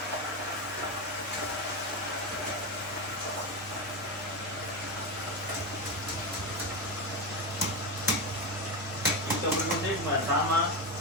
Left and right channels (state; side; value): noise; left; hum, 25 dB below the sound